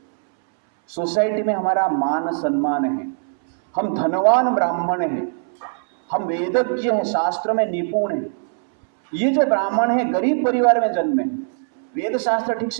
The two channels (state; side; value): silent; left; 65 dB below the other